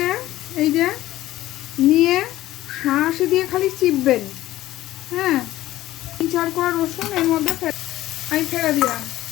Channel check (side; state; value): right; quieter; 15.2 dB